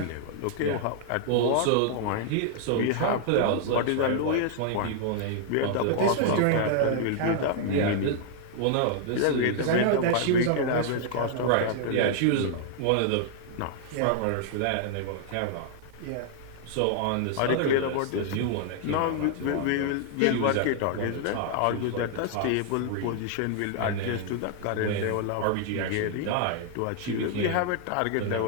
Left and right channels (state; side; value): different; both; correlation 0.00